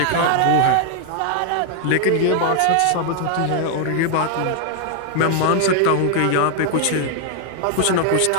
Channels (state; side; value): different; both; correlation 0.00